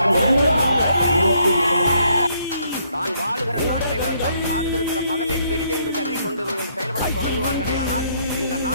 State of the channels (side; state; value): both; inverted; correlation -0.70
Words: தான் வாழுகிற நாட்டை விட தான் சார்ந்திருக்கிற மதமே பெரிதென்று கருதி கொண்டு செயல்பட தொடங்குவார்களே, ஆனால் இந்த